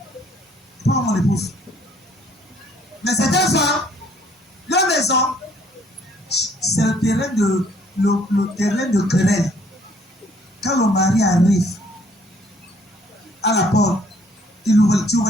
Pas mon épouse. Mais c'est un soir, la maison, c'est le terrain de querelle. Quand le mari arrive à la porte, tu ouvres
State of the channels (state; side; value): normal; both; correlation 0.62